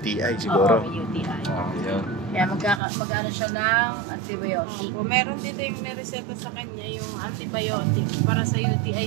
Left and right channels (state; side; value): drops out; left; at 2.8 s